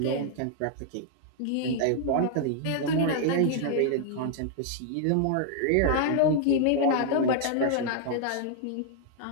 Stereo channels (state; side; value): different; both; correlation -0.01